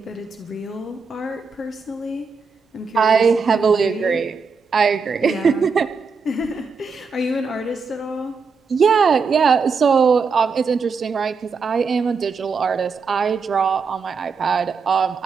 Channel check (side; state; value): left; quieter; 5.0 dB